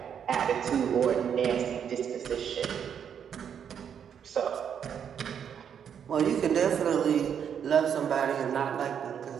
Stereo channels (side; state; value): left; quieter; 8.1 dB